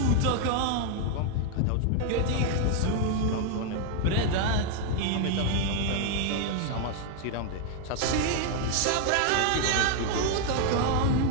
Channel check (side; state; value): both; different; correlation 0.00